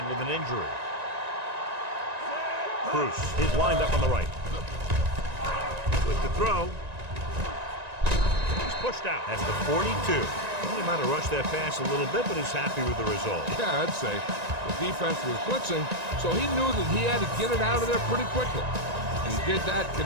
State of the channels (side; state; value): left; late; 1.9 ms